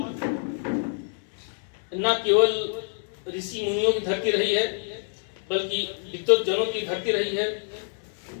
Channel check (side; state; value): right; silent; 59 dB below the other